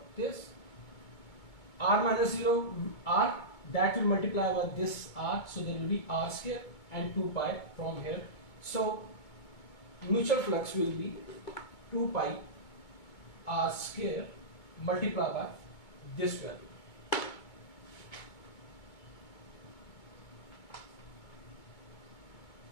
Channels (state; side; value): late; right; 2.2 ms